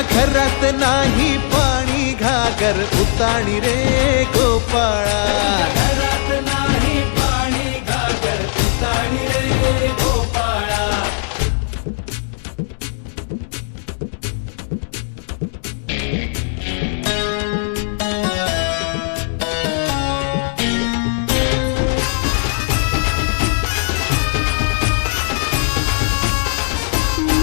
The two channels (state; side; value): silent; right; digital silence